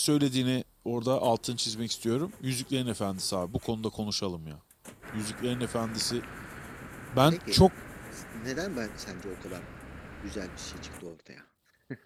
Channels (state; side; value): identical; both; correlation 1.00